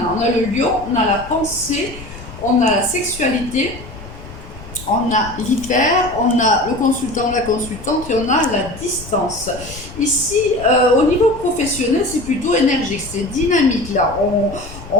On a le lion, on a la pensée, on a la sexualité, on a l'hyper, on a le consultant, la consultante et on a la distance. Ici, au niveau professionnel, c'est plutôt énergique, c'est dynamique. Là,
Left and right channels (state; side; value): noise; left; rumble, 15 dB below the sound